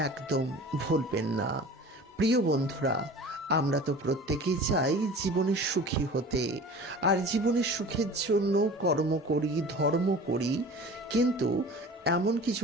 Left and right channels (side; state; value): both; normal; correlation 0.40